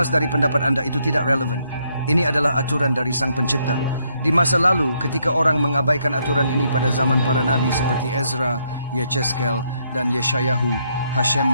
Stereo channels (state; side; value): inverted; both; correlation -0.74